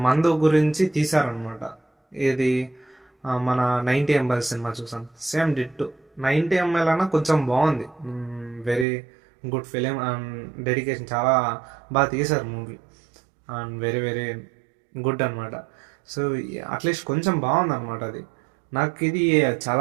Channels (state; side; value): drops out; left; at 8.8 s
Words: మందు గురించి తీశారనమాట. ఇది మన 90 ml సినిమా చూసాను, సేమ్ డిట్టు. 90 ml అన్నా కొంచెం బాగుంది. Very good film and dedication, చాలా బాగా తీశారు movie and very very good అనమాట. సో అట్లీస్ట్ కొంచెం బాగుంది అనమాట అది. నాకు ఇది